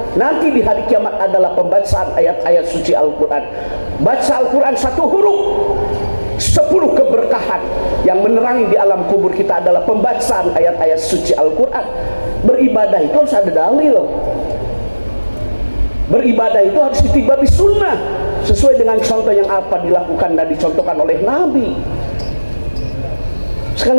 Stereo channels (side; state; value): both; inverted; correlation -1.00